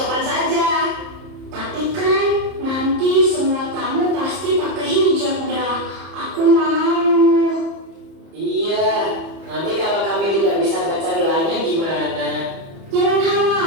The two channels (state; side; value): late; left; 30 ms